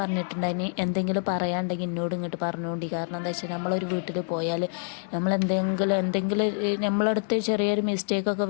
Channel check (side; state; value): right; silent; 60 dB below the other